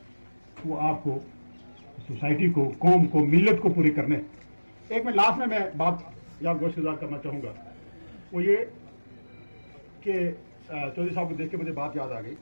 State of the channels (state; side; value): inverted; both; correlation -1.00